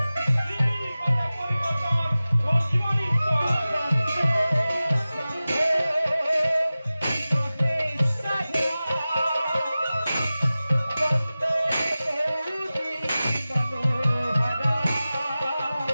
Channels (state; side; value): inverted; both; correlation -0.96